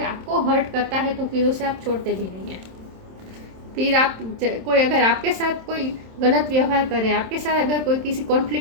आपको हर्ट करता है तो फिर उसे आप छोड़ते भी नहीं हैं। फिर कोई अगर आपके साथ कोई गलत व्यवहार करे, आपके साथ अगर कोई किसी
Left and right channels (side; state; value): left; late; 27 ms